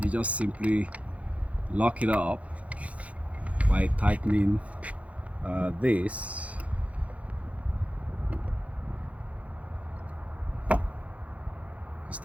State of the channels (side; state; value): left; late; 0.066 ms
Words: you just simply lock it up by tightening this.